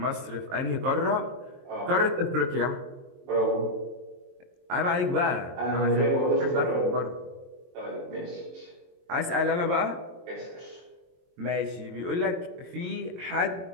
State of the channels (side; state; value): left; late; 23 ms